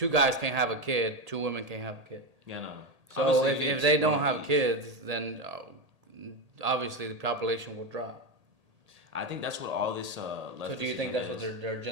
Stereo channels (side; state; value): left; late; 1.8 ms